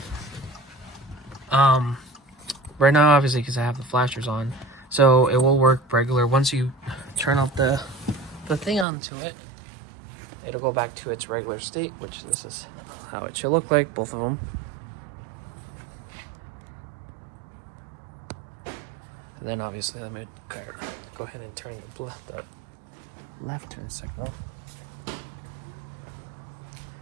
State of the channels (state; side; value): drops out; left; at 8.8 s